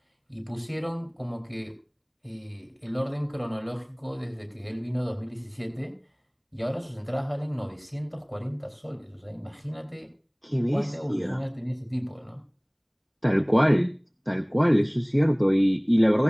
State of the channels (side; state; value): both; identical; correlation 1.00